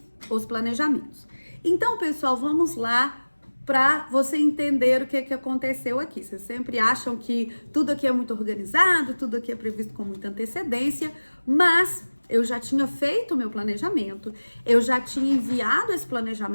os planejamentos. Então, pessoal, vamos lá para você entender o que aconteceu aqui. Vocês sempre acham que tudo aqui é muito organizado, tudo aqui é previsto com muita antecedência, mas eu já tinha feito o meu planejamento, eu já tinha enviado esse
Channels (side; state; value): both; inverted; correlation -1.00